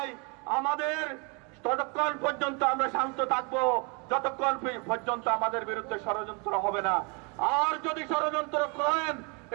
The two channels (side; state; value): left; quieter; 32.2 dB